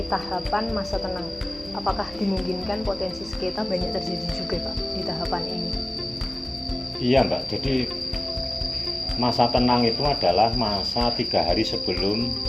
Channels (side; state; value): right; noise; hum, 18 dB below the sound